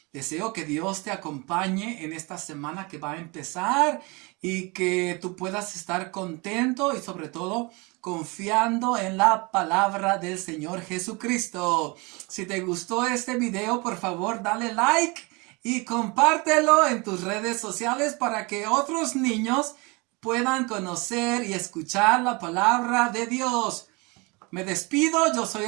Deseo que Dios te acompañe en esta semana que va a empezar y que tú puedas estar contento y sobre todo confiando en la palabra del Señor Jesucristo. Si te gustó este video, por favor dale like y compártelo en tus redes sociales para que otros niños puedan conocer y escuchar la palabra de Dios. Me despido, yo soy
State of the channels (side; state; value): left; quieter; 27.3 dB